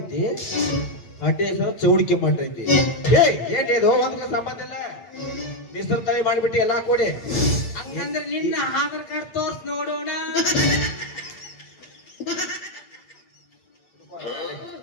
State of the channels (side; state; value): right; late; 8.2 ms